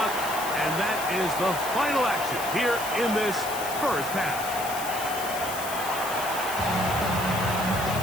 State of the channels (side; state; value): left; noise; hiss, 8 dB below the sound